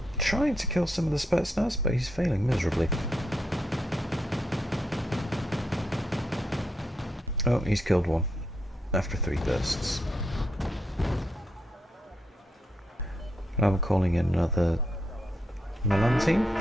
Trying to kill some of the Spetsnaz, but he's failing miserably. Oh, he's killed one after 3 bursts. I'm calling in another Milan team.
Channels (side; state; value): both; normal; correlation 0.80